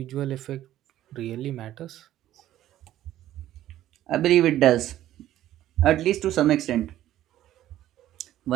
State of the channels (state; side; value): quieter; left; 13.2 dB